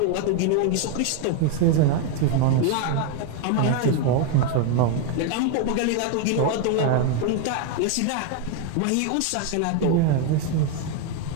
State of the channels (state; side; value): different; both; correlation 0.01